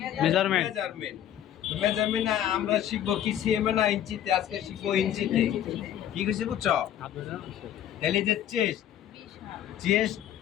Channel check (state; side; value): quieter; right; 10.9 dB